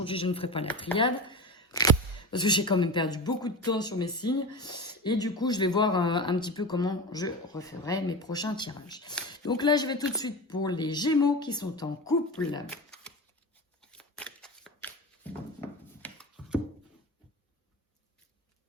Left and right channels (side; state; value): both; normal; correlation 0.27